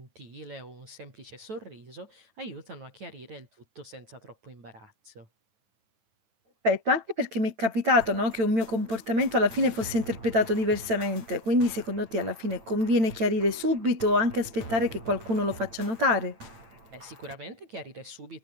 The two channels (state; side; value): late; left; 9.0 ms